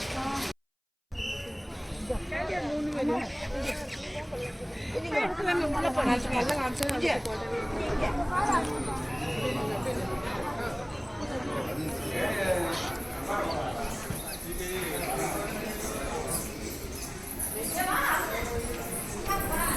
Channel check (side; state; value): both; identical; correlation 1.00